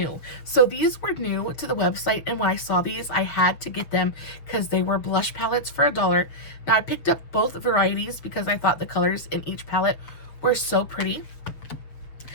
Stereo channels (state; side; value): late; right; 6.8 ms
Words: So these were new to the website, and when I saw these, I had to get them because they were blush palettes for $1. Now I picked up both varieties because I thought the colors in each palette were so pretty.